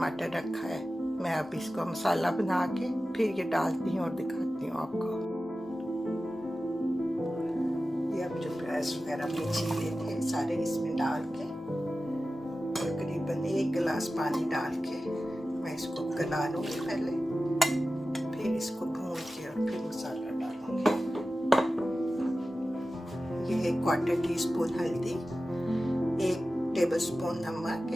रखा है। मैं अब इसको मसाला बना के फिर ये डालती हूँ और दिखाती हूँ आपको। ये अब जो प्याज वगैरह में छीले थे सारे इसमें डाल के तकरीबन 1 गिलास पानी डाल के मैं इसको गला लूँगी पहले, फिर इसको भून के और फिर मसाला डालूँगी। ये 1/4 टीस्पून हल्दी, 1 टेबलस्पून नमक,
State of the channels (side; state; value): both; normal; correlation 0.94